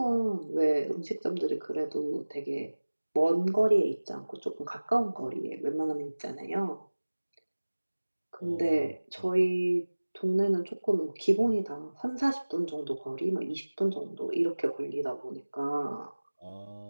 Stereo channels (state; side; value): inverted; both; correlation -1.00